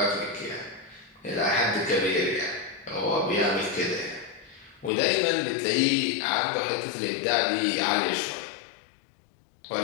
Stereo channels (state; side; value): drops out; right; at 4.9 s